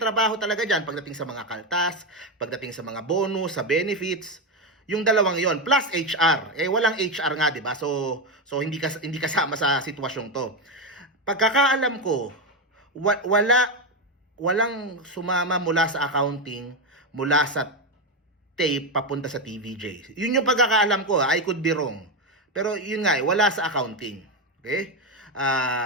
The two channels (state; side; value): normal; both; correlation 0.10